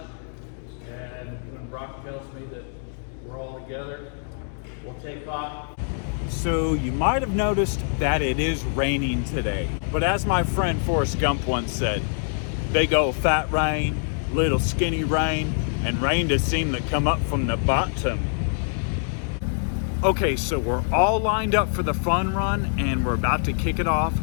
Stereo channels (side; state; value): right; silent; digital silence